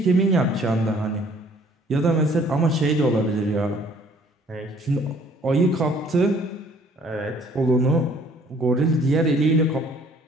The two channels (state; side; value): normal; both; correlation 0.58